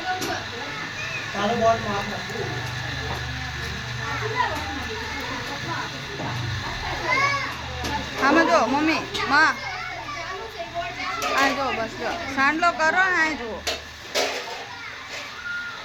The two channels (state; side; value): identical; both; correlation 1.00